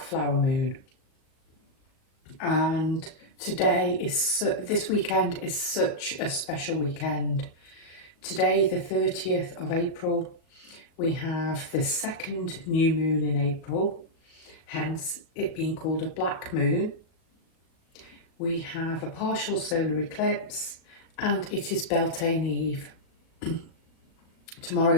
Flower Moon. And this weekend is such a special weekend. Today, the 30th of April, we have the second new moon in April, hence it being called a black moon. We have a partial solar eclipse and it is Beltane Eve. Tomorrow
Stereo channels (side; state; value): right; late; 37 ms